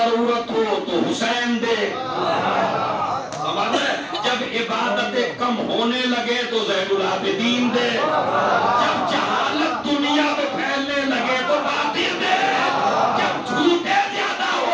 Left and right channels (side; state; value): both; identical; correlation 1.00